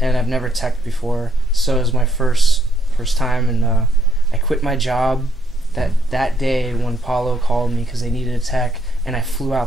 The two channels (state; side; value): normal; both; correlation 0.74